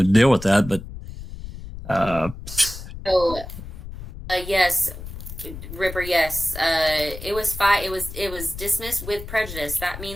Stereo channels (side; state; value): left; noise; rumble, 11 dB below the sound